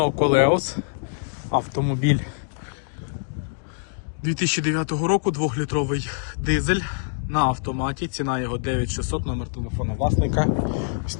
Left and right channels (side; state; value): right; silent; digital silence